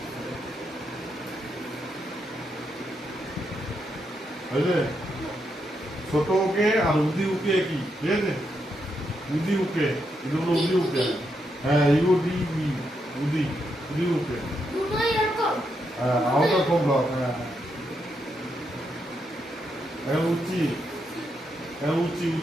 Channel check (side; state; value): both; normal; correlation 0.81